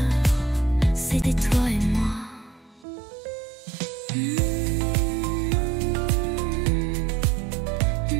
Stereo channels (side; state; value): left; drops out; at 2.9 s